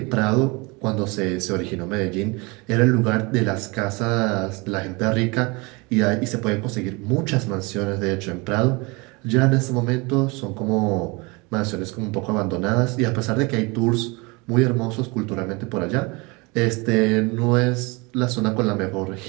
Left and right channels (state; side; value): quieter; left; 26.9 dB